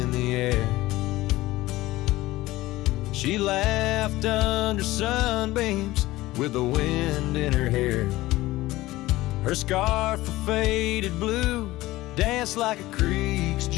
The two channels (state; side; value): quieter; right; 17.8 dB